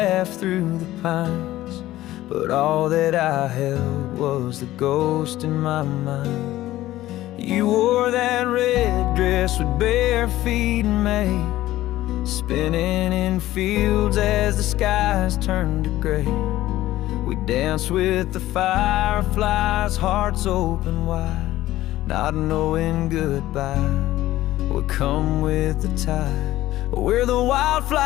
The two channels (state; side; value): quieter; right; 15.4 dB